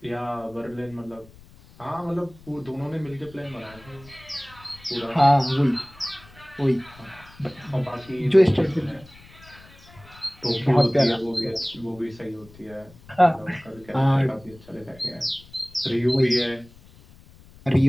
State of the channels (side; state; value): left; noise; rumble, 23 dB below the sound